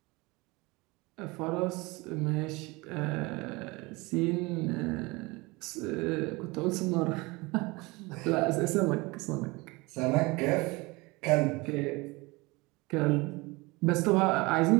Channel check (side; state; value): left; quieter; 24.1 dB